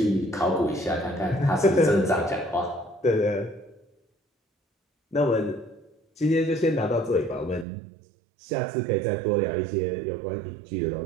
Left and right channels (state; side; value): drops out; left; at 7.7 s